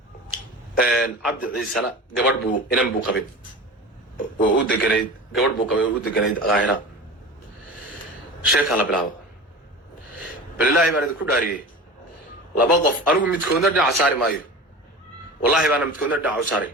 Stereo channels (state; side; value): normal; both; correlation 0.33